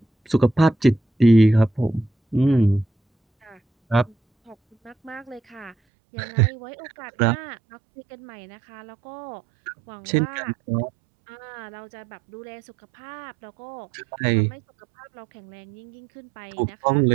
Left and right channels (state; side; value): drops out; left; at 5.8 s